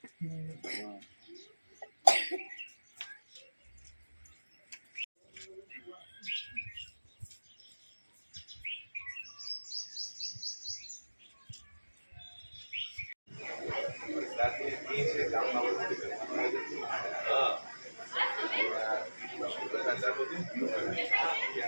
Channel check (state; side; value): inverted; both; correlation -1.00